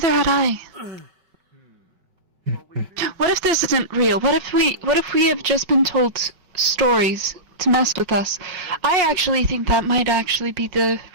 had I. What if this isn't real? What if we have just been told stories to mess with us? I actually think that might actually be the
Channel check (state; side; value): late; left; 5.3 ms